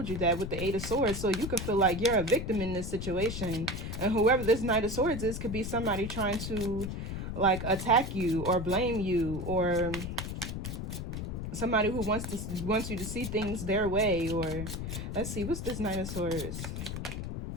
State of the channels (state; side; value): noise; left; rumble, 5 dB below the sound